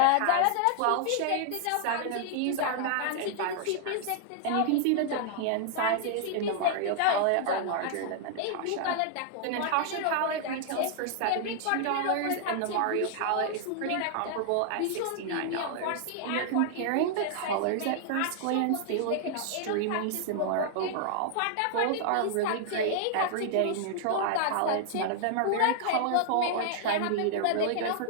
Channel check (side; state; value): both; different; correlation 0.00